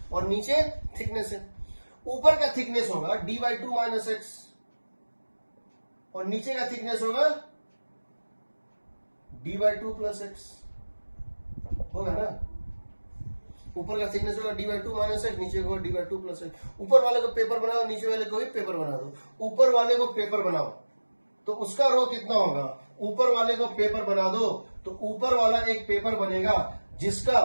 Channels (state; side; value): inverted; both; correlation -1.00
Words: और नीचे थिकनेस है। ऊपर का थिकनेस होगा d/2 माइनस एक्स और नीचे का थिकनेस होगा d/2 प्लस एक्स, होगा ना। ऊपर का थिकनेस होगा d/2 माइनस एक्स, नीचे होगा d/2 प्लस एक्स। ऊपर वाले को पेपर बनाओ, नीचे वाले को भी पेपर बना दो। ऊपर वाले को पेपर बनाओ तो उसका रो कितना होगा, ऊपर वाले को पेपर बना दो तो ऊपर वाला एक पेपर बनेगा